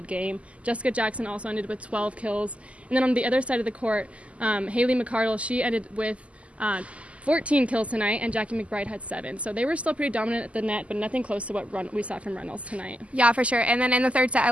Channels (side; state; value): left; late; 0.063 ms